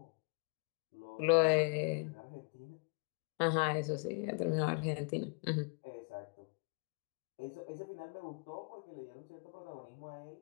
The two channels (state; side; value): quieter; right; 38.4 dB